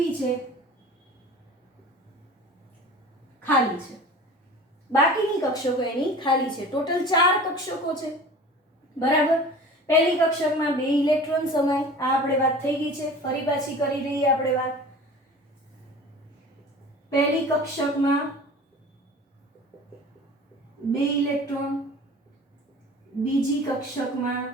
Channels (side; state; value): both; normal; correlation 0.40